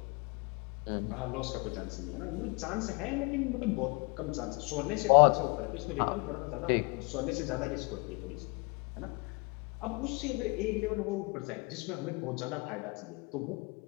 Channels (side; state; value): right; quieter; 29.9 dB